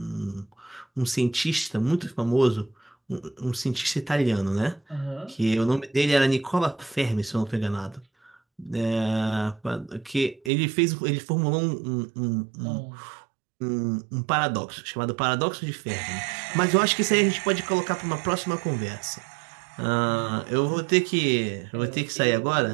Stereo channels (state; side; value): drops out; left; at 10.5 s